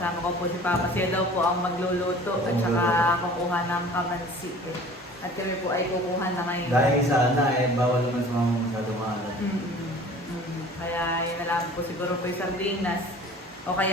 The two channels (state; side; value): normal; both; correlation 0.45